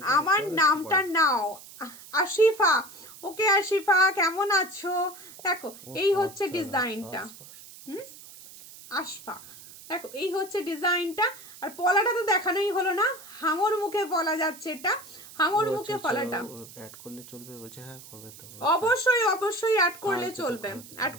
আমার নামটা নাও, আশিফা। ওকে আশিফা, কেমন আছো? দেখো এই হচ্ছে ডিজাইনটা, আশফা। দেখো এই হচ্ছে ডিজাইনটা, আর পলাটা তো দেখানোই হলো না, হাঙর মুখে পলা যাচ্ছে, এটা হাঙর মুখে পলাটা অ্যাড করলে চলবে বলছে, হ্যাঁ করবে তো, অবশ্যই অ্যাড করলে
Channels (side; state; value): right; noise; hiss, 18 dB below the sound